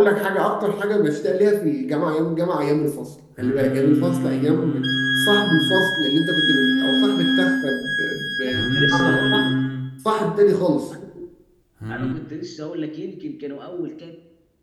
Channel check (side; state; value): both; identical; correlation 1.00